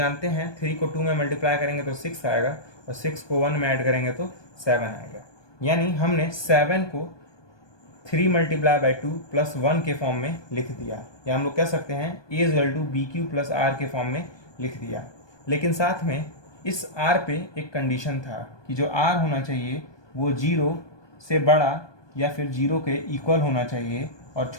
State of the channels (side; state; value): right; late; 1.2 ms